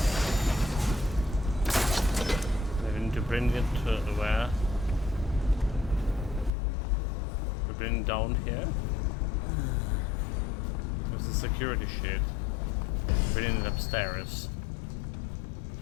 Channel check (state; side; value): drops out; right; at 6.5 s